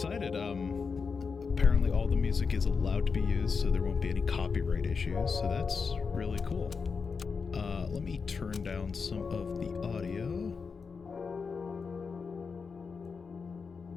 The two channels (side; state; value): right; quieter; 5.3 dB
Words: Apparently all the music is allowed to be used, so there won't be any copyright issues, so that's really cool. Let me turn down some of the audio.